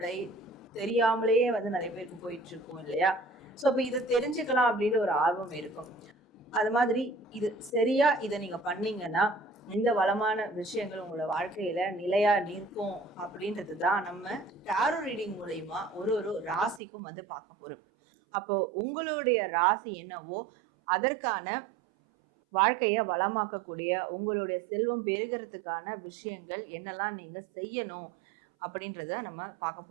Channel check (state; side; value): drops out; left; at 16.8 s